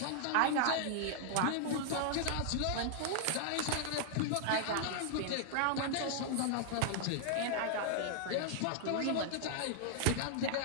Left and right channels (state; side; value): different; both; correlation -0.01